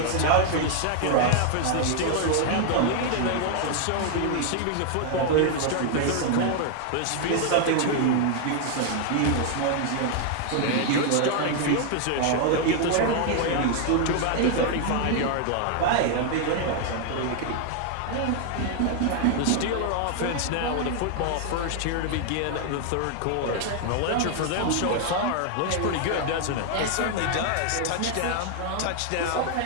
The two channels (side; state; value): both; different; correlation 0.00